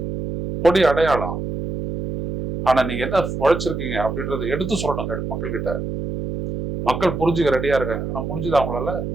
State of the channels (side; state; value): right; noise; hum, 5 dB below the sound